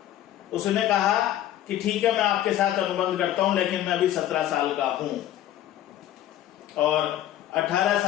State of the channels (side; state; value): right; quieter; 12.5 dB